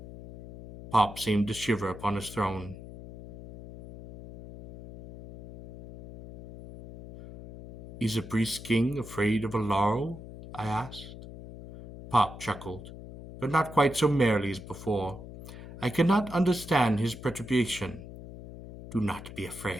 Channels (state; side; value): noise; left; hum, 14 dB below the sound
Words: Pop seemed to shiver upon his throne. Is a priest king afraid of a laurel? I asked. Pop chuckled, but not quite so merrily as before. I could not understand his perturbation. Do not be